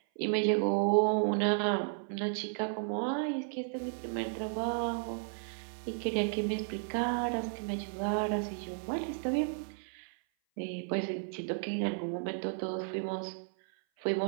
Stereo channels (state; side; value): silent; left; 55 dB below the other